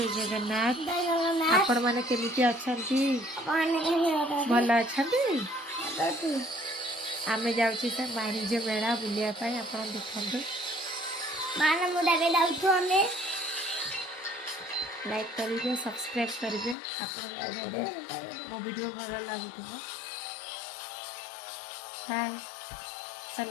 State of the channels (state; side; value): drops out; right; at 16.8 s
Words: जगन्नाथ आपण माने केमिति अछंती भल अछंती आमे जाउची से वाणिज्य मेला बुलिया पाई आपण देखंतु माने मुडा के जाउछु हमें लाइक करिवे सब्सक्राइब करिवे आपण जदे मो वीडियो भल लागुथबो हाय